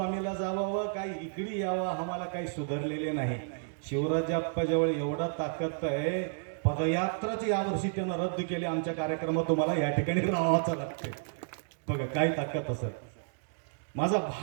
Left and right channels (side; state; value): left; silent; digital silence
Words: जावावं काही इकडे यावं आम्हाला काही सुधारलेले नाही. शिवराजप्पाजवळ एवढा ताकद आहे, पदयात्राच यावर्षी त्यानं रद्द केली. आमच्या कार्यक्रमात तुम्हाला या ठिकाणी राहावंच लागते. बघा काय ताकद असत. माझा